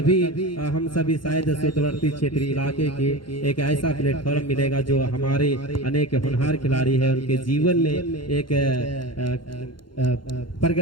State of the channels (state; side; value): late; right; 0.72 ms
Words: हम सभी शायद सुदूरवर्ती क्षेत्रीय इलाके के एक ऐसा प्लेटफॉर्म मिलेगा जो हमारे अनेक होनहार खिलाड़ी हैं उनके जीवन में एक